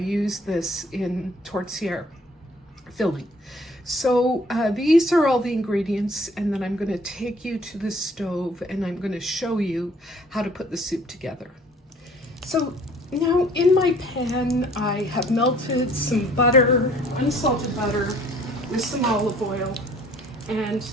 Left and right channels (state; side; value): normal; both; correlation 0.56